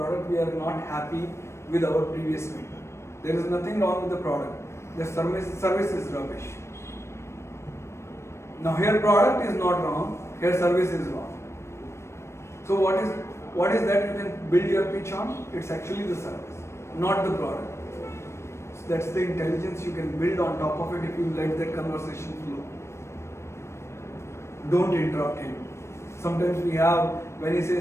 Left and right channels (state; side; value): late; right; 0.13 ms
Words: We are not happy with our previous vendor. There is nothing wrong with the product. The service is rubbish. Now here product is not wrong, here service is wrong. So what is that you can build your pitch on? It's actually the service, not the product. So that's the intelligence you can build on top of it if you let that conversation flow. Don't interrupt him. Sometimes we have, when he